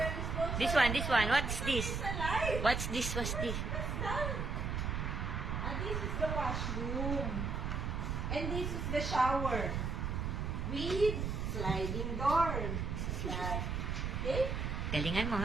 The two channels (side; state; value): right; noise; rumble, 1 dB below the sound